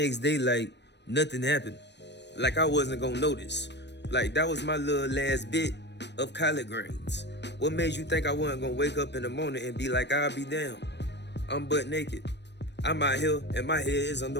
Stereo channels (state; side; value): late; right; 0.50 ms